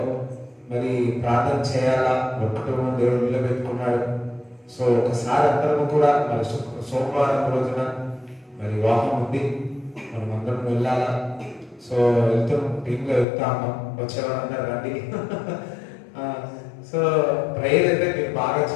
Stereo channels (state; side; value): drops out; right; at 13.2 s